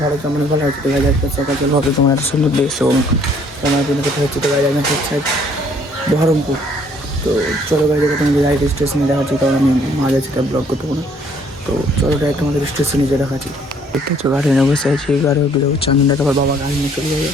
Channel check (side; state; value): both; normal; correlation 0.62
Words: ভালো কেমন ভালো হচ্ছে তো গাইজ আজকে সকাল সকাল হবে তোমার এত সুন্দর দেশ এবং তোমার জন্য কোথায় হচ্ছে তো গাইজ আমি হচ্ছে বহরমপুর। তো চলো গাইজ এবার তোমাদের ডাইরেক্ট স্টেশনে দেখাচ্ছি, কারণ আমি মাঝে সেটা ব্লগ করতে পারবো না। তো চলো ডাইরেক্ট তোমাদের স্টেশনে যে দেখাচ্ছি। দেখতে হচ্ছে গাড়ি নিয়ে বসে আছি, গাড়ি চান্দনটা আবার বাবা গাড়ি নিয়ে চলে যাবে।